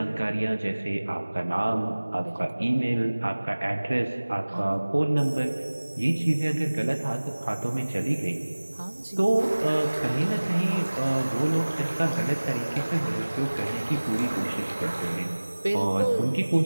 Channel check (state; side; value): inverted; both; correlation -1.00